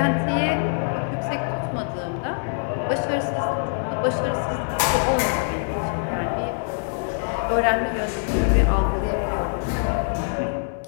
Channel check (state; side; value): silent; right; digital silence